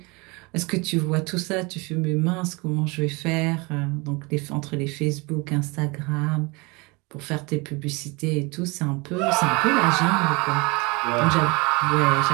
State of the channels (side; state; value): left; quieter; 27.0 dB